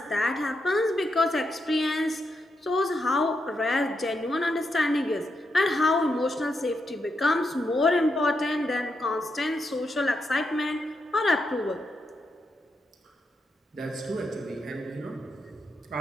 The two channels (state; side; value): normal; both; correlation 0.83